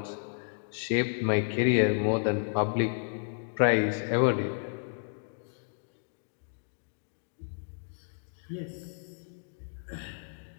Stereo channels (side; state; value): right; silent; 57 dB below the other